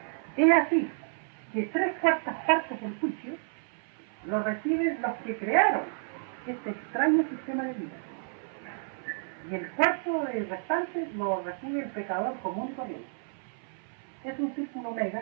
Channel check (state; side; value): silent; left; 57 dB below the other